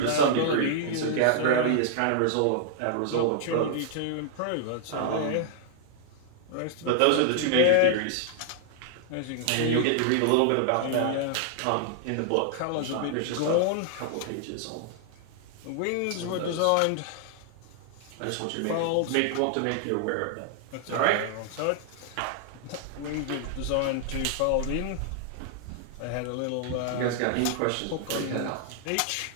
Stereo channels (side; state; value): both; different; correlation -0.01